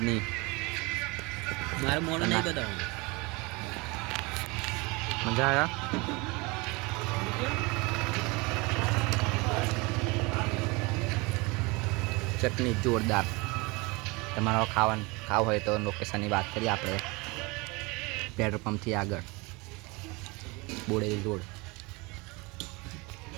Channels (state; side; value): quieter; left; 25.9 dB